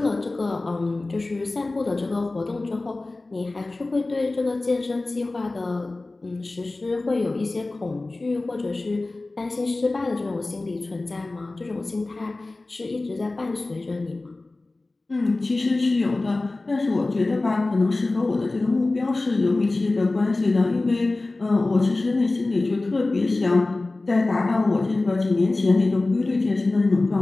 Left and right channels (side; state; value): right; quieter; 3.1 dB